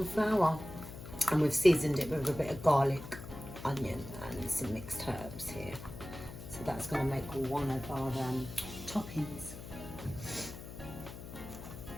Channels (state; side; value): noise; left; hum, 12 dB below the sound